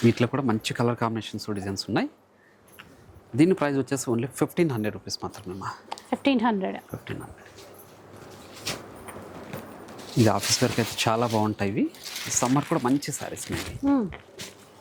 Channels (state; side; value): identical; both; correlation 1.00